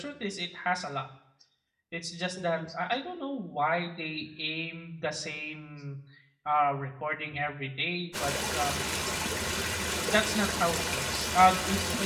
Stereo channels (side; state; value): both; identical; correlation 1.00